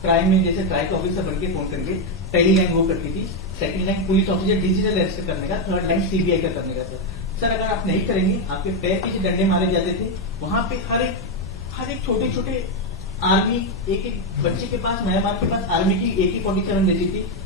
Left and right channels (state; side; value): normal; both; correlation 0.05